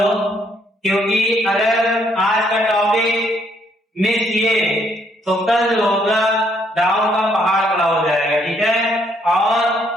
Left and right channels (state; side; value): normal; both; correlation 0.69